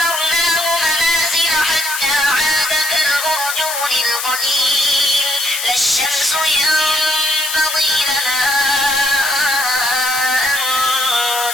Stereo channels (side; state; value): left; noise; hiss, 4 dB below the sound